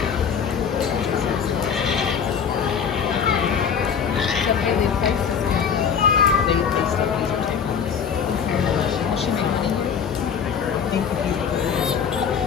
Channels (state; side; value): quieter; right; 7.1 dB